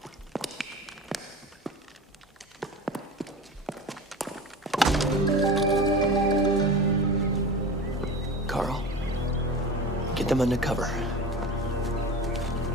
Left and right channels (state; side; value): normal; both; correlation 0.32